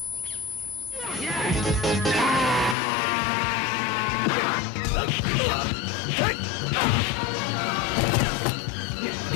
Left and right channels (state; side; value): drops out; right; at 2.8 s